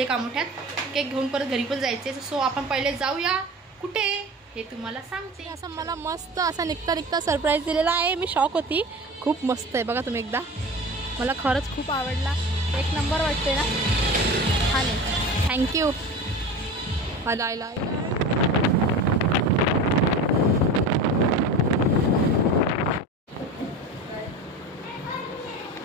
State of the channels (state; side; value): normal; both; correlation 0.33